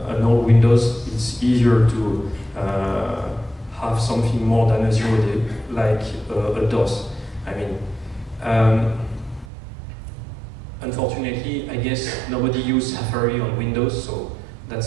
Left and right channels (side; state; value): left; drops out; at 9.5 s